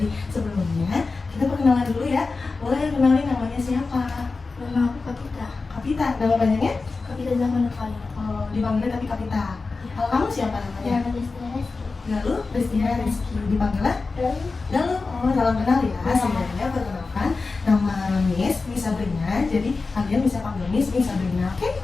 sebelumnya kita perkenalan dulu ya. Boleh kenalin namanya siapa? Nama aku Kapita. Kapita, nama panjangnya? Kapita Zaman Kali. Oh, dipanggilnya tapi Kapita. Kalau kamu siapa namanya? Nama Desti. Galuh, Destina Rizky. Dipanggilnya? Galuh. Oh, salam kenal ya. Sebenarnya perkenalkan nama Miss Sabrina. Jadi kalian bisa panggil Miss Sabrina, oke?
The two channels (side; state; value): right; quieter; 4.0 dB